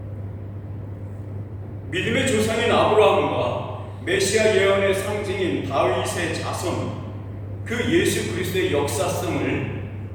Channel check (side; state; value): both; identical; correlation 1.00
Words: 믿음의 조상인 아브라함과 메시아 예언의 상징인 다윗의 자손, 그 예수 그리스도의 역사성을,